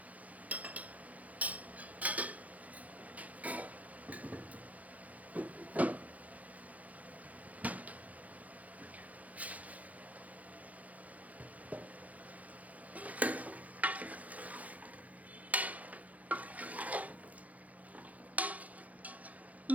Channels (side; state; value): left; late; 0.073 ms